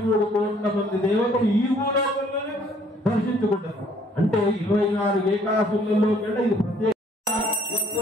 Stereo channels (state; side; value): normal; both; correlation 0.61